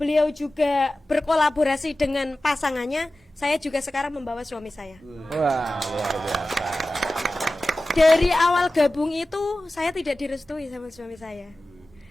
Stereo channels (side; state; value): both; normal; correlation 0.95